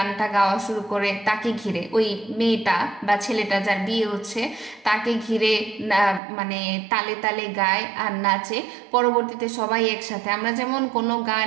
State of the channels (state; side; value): drops out; left; at 6.2 s